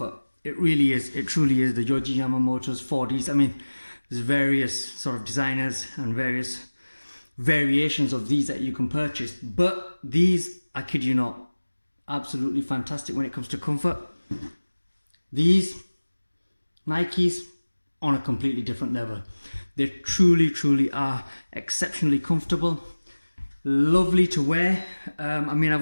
It really is. It truly is. The Yohji Yamamoto's 4Ds. I mean, there's various sort of designers and various variations of these that you can purchase. But these, I kid you not, absolutely fantastic when it comes to comfort. These Nikes on a completely different level. They truly are exceptionally comfortable, lovely to wear. I mean,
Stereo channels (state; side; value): inverted; both; correlation -1.00